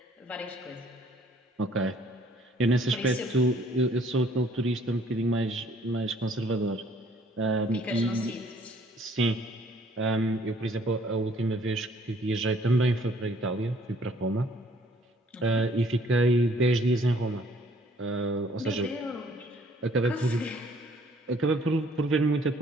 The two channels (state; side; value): normal; both; correlation 0.60